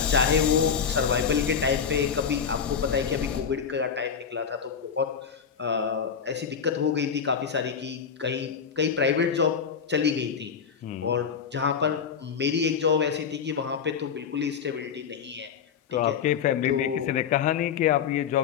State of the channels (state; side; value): quieter; right; 6.9 dB